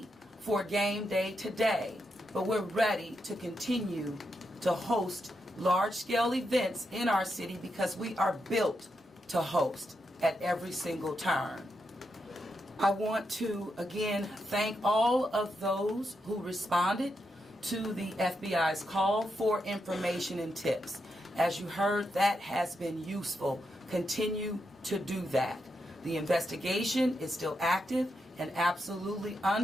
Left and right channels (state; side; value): normal; both; correlation 0.84